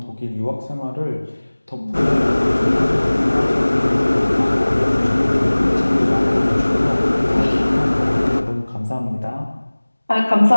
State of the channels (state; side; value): inverted; both; correlation -1.00